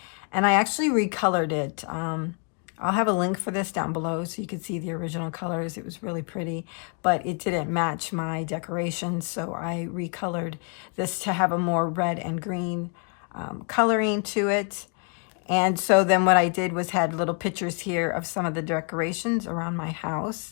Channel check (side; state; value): right; quieter; 39.8 dB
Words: and I actually recolored it. I'll have a link for this down below so you can see the original colors. It was really pretty, but it didn't match my decorations, so I recolored this to have a more red and green coloring to it. And so then what I did was had little pictures here of some of the decorations around my